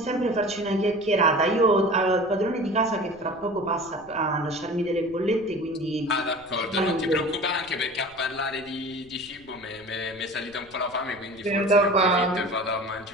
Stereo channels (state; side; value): noise; left; rumble, 26 dB below the sound